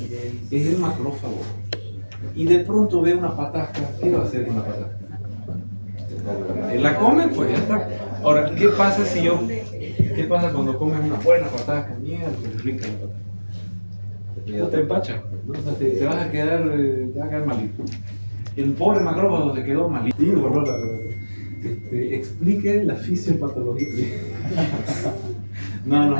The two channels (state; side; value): inverted; both; correlation -1.00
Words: Es el macrófago. Y de pronto ve una patasca, ¿qué va a hacer con la patasca? La come, pues ya está. Ahora, ¿qué pasa qué pasa cuando comes una buena patasca? Mierda, qué rica la patasca. No te empachas, ¿no? O sea, te vas a quedar malito. El pobre macrófago se quedó malito. Explique la fisiopatología.